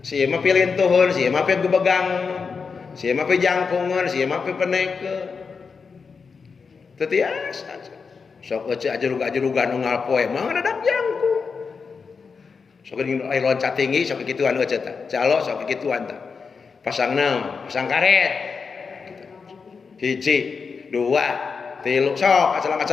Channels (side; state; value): right; quieter; 5.3 dB